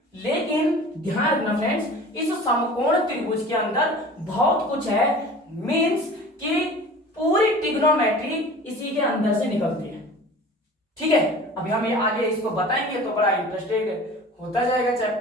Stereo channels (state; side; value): normal; both; correlation 0.41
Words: लेकिन ध्यान रखना फ्रेंड्स, इस समकोण त्रिभुज के अंदर बहुत कुछ है, मींस कि पूरी ट्रिग्नोमेट्री इसी के अंदर से निकलती है। ठीक है, अभी हम ये आगे इसको बताएंगे तो बड़ा इंटरेस्टेड होता जाएगा